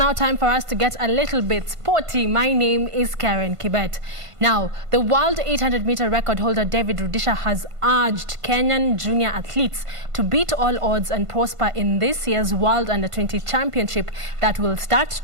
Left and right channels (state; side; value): late; left; 1.5 ms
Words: time for us to get a little bit sporty. My name is Karen Kibet. Now, the world 800-meter record holder David Rudisha has urged Kenyan junior athletes to beat all odds and prosper in this year's World Under-20 Championship that will start